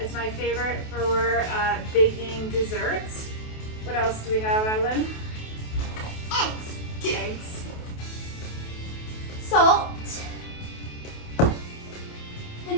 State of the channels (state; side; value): late; right; 28 ms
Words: is my favorite for baking desserts. What else do we have, Evelyn? Eggs. Salt.